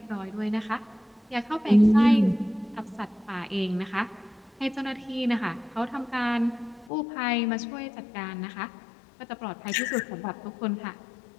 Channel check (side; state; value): right; drops out; at 6.9 s